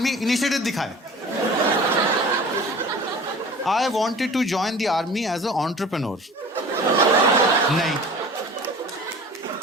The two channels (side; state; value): both; normal; correlation 0.42